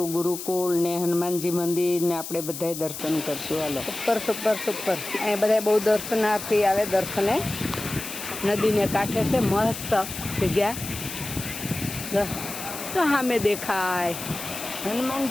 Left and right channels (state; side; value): noise; left; hiss, 9 dB below the sound